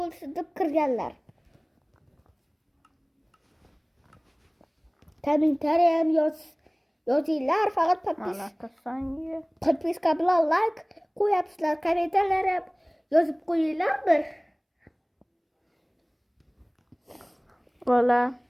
deb kirganlar. Kommentariy ham yozinglar, faqat подписка bilan like qo'yapsizlar, kommentariylar ham yozib qo'yinglar bir. Vola.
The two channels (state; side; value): identical; both; correlation 1.00